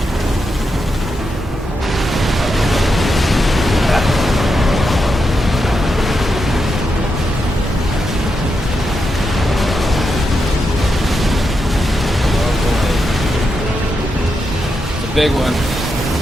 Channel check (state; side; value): normal; both; correlation 0.85